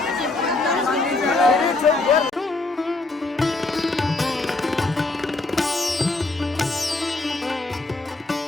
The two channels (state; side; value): quieter; right; 3.2 dB